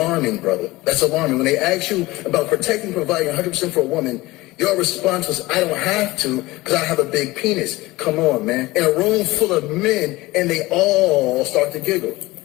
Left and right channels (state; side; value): quieter; right; 19.9 dB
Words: brother. That's alarming. When they asked you about protecting and providing 100% for a woman, your response was, I don't have to because I have a big penis. Come on, man. In a room full of men, and they all start to giggle.